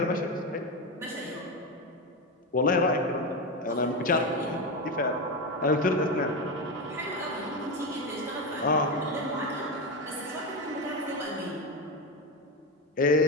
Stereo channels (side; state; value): both; normal; correlation 0.14